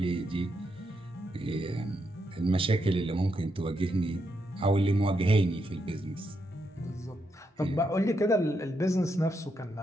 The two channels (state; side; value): normal; both; correlation 0.81